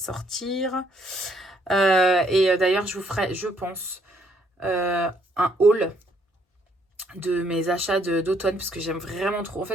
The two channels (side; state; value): both; normal; correlation 0.68